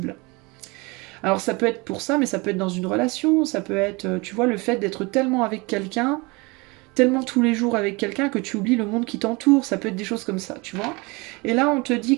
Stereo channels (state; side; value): quieter; left; 26.3 dB